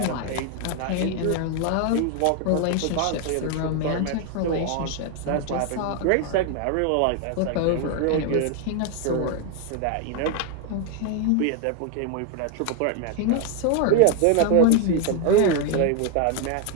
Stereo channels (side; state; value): both; different; correlation 0.01